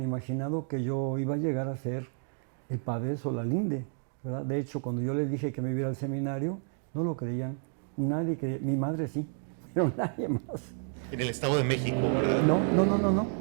imaginado que yo iba a llegar a ser el padre de Solalinde, ¿verdad? De hecho, cuando yo les dije que me iba a ir al seminario, no lo creían. Nadie creía. Mi madre sí, pero nadie más. En el Estado de México, ¿verdad? No.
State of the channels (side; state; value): left; silent; 57 dB below the other